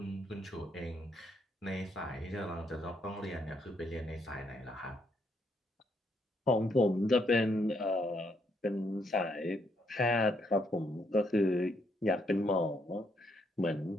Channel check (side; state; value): both; normal; correlation 0.74